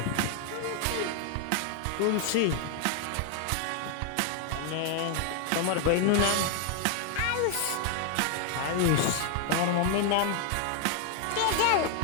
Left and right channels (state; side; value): different; both; correlation 0.00